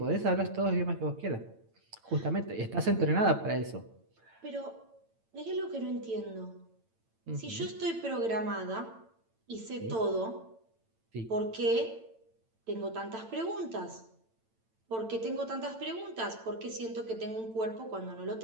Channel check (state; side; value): late; left; 8.9 ms